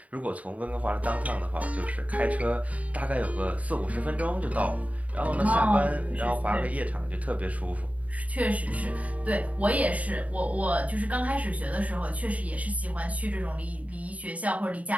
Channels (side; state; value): left; late; 0.069 ms